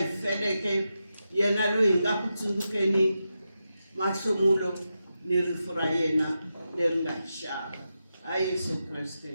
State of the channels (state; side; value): inverted; both; correlation -0.89